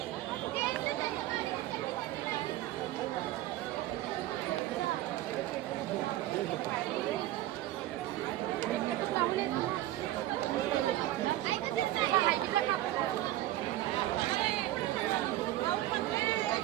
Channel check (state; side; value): quieter; left; 15.1 dB